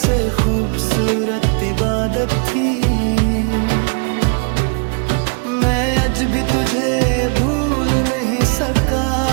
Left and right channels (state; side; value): quieter; left; 36.6 dB